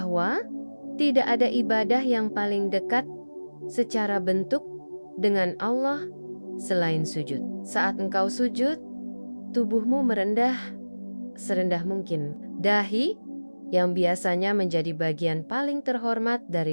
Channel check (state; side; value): inverted; both; correlation -1.00